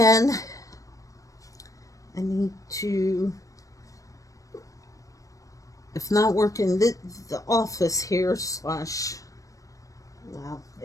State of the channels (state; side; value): late; right; 0.16 ms